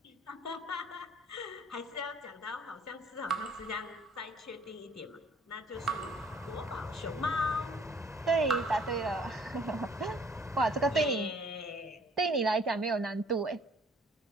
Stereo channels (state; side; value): normal; both; correlation 0.57